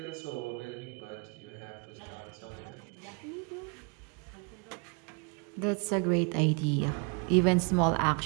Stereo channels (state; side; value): quieter; left; 34.1 dB